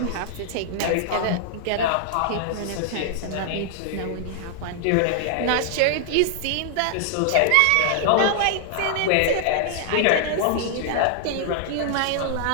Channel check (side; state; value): both; different; correlation 0.00